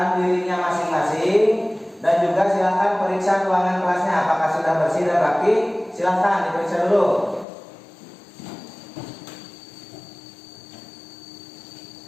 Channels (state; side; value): drops out; right; at 7.5 s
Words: dirinya masing-masing dan juga silakan periksa ruangan kelasnya apakah sudah bersih dan rapi. Silakan diperiksa dulu.